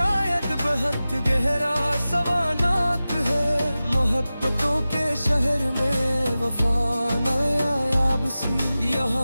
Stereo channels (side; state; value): both; inverted; correlation -0.95